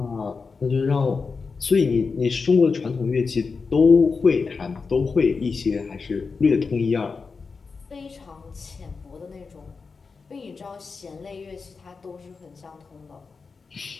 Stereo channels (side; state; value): right; quieter; 4.8 dB